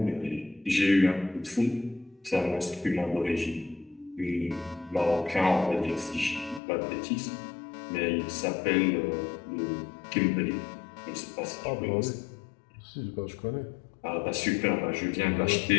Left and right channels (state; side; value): drops out; right; at 6.6 s